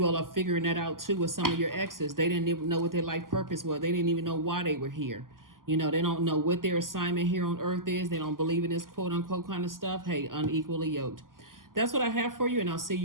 all are figuring that out too with some of your exes. They didn't even know what their life purpose was. They didn't even know why they were here. They don't know what their assignment here on earth is. They don't believe in this quote unquote kind of stuff. Hey, unequally yoked. That's what I have for you, and I'll see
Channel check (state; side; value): late; left; 0.91 ms